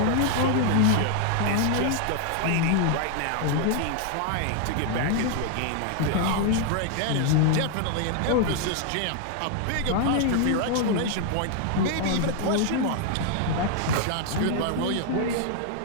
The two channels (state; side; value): different; both; correlation 0.00